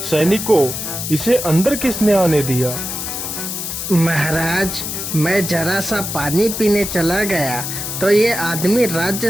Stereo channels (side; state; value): left; noise; hiss, 5 dB below the sound